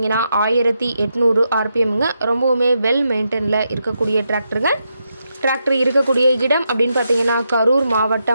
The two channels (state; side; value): inverted; both; correlation -0.83